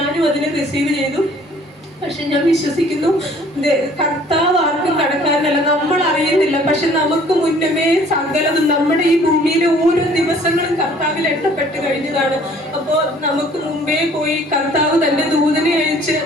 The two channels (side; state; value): both; normal; correlation 0.55